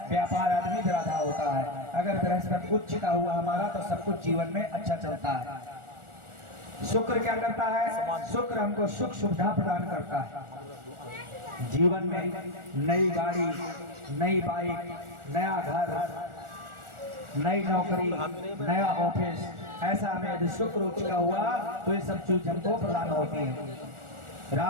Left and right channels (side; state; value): left; late; 1.4 ms